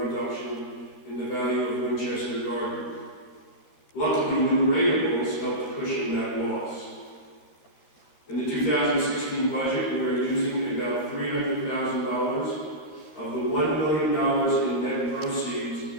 in the value of Winchester Garden. Luckily, new ratables helped cushion that loss. In the 2016 budget, we are using about $300,000 of the $1 million in net proceeds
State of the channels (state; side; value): late; right; 13 ms